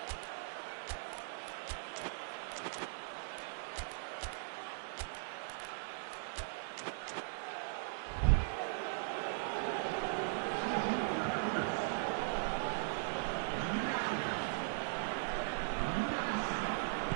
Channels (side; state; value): left; silent; digital silence